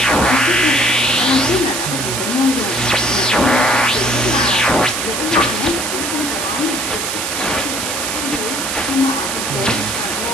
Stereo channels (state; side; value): noise; right; hiss, 3 dB below the sound